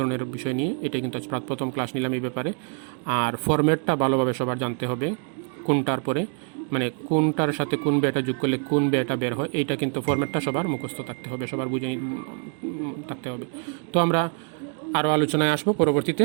বিষয় নিয়ে। এটা কিন্তু আজ প্রথম ক্লাস নিলাম এই ব্যাপারে। আর ফরম্যাটটা ভালোভাবে সবার জানতে হবে, কোনটার পরে মানে কোনটার সাথে কোন ব্যয়টা যোগ করলে কোন ব্যয়টা বের হয়, এইটা কিন্তু ফরম্যাটটা সবার মুখস্থ থাকতে হবে, সবার বুঝে থাকতে হবে। তো আমরা আরও আলোচনায় আসবো পরবর্তীতে।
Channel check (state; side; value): quieter; left; 38.9 dB